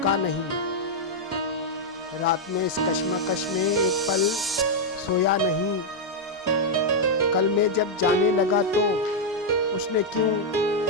नहीं। रात में इस कश्मकश में एक पल सोया नहीं। कल में जब जाने लगा तो उसने क्यों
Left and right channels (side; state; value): both; normal; correlation -0.02